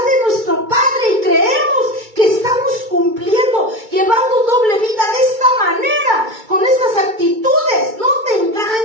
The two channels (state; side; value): late; left; 2.3 ms